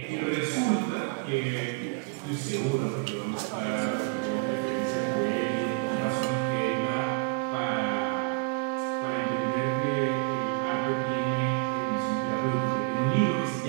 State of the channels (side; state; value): left; quieter; 34.5 dB